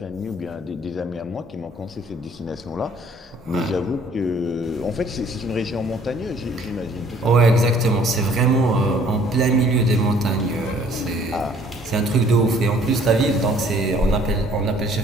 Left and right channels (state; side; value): normal; both; correlation 0.58